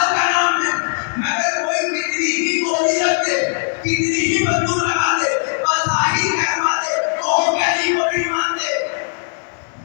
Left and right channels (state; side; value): silent; right; digital silence